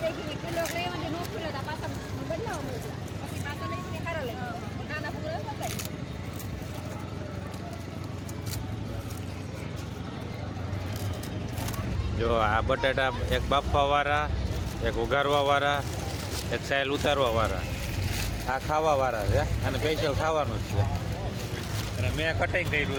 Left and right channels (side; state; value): both; identical; correlation 1.00